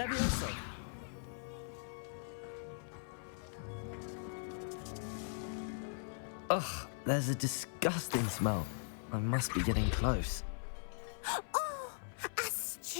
Ugh, there's a disgusting smell. I must be getting close. Oh, a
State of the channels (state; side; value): silent; right; 51 dB below the other